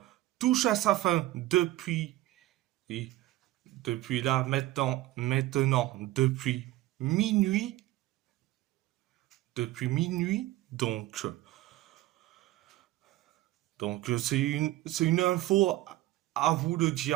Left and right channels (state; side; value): quieter; left; 16.6 dB